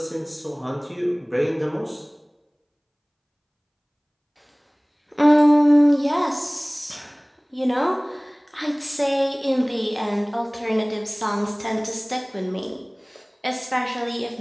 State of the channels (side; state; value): both; identical; correlation 1.00